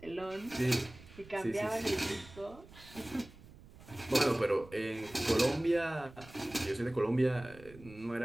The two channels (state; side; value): noise; right; rumble, 20 dB below the sound